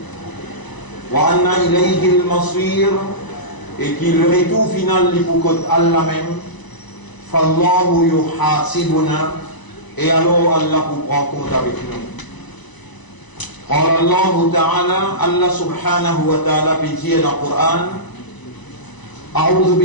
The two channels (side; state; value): right; late; 1.0 ms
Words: Wa anna ilayhi al-masir, et qui le retour final li pour Allah même. Fallahu yuhasibuna, et alors Allah vous prend compte avec nous. قال الله تعالى الله سبحانه وتعالى في القرآن أعوذ